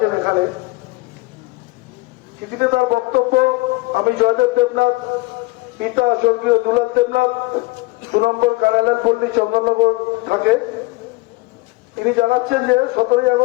এখানে। চিঠিতে তার বক্তব্য: আমি জয়দেব দেবনাথ, পিতা স্বর্গীয় দুলাল দেবনাথ, 2 নম্বর কারালাল পল্লী, চন্দননগর থাকে। তিনি জানাচ্ছেন যে 17ই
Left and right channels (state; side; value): quieter; right; 22.2 dB